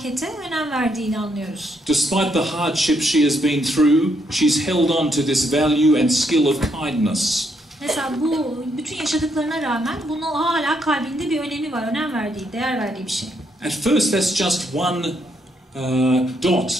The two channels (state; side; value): normal; both; correlation 0.75